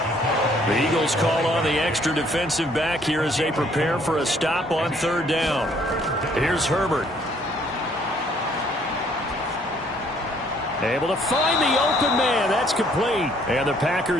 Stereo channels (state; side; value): normal; both; correlation 0.63